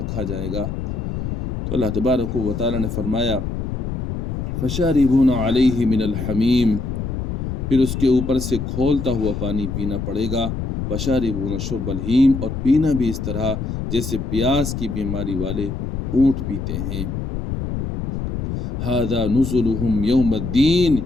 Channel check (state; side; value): noise; left; rumble, 3 dB below the sound